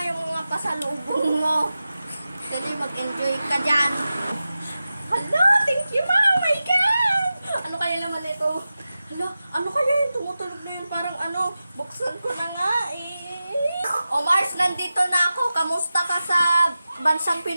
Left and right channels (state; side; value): inverted; both; correlation -0.94